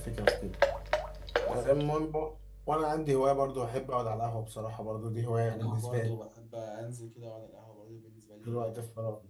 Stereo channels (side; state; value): both; identical; correlation 1.00